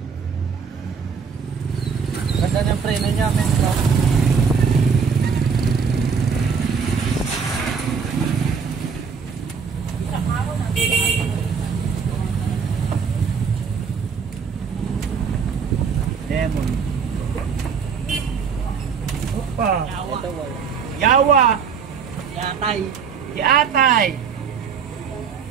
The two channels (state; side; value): quieter; left; 6.1 dB